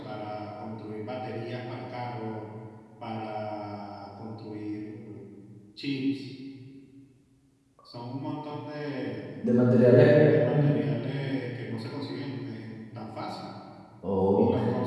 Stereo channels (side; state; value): both; identical; correlation 1.00